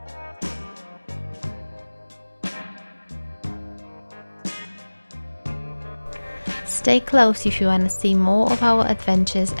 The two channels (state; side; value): inverted; both; correlation -1.00